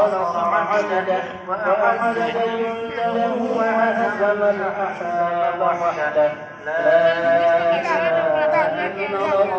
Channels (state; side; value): identical; both; correlation 1.00